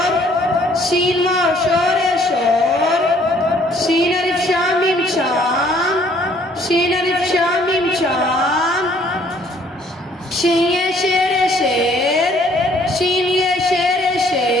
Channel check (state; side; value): normal; both; correlation 0.61